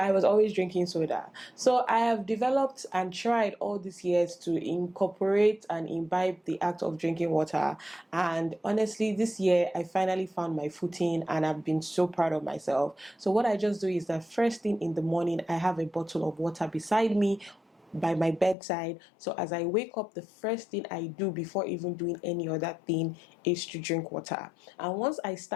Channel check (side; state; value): right; drops out; at 18.6 s